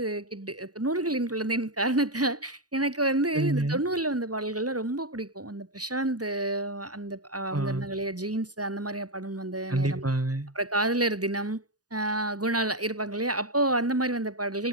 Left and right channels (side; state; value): left; late; 0.68 ms